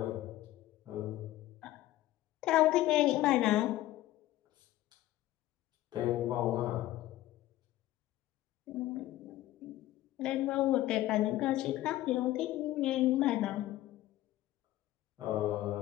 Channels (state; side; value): quieter; right; 15.2 dB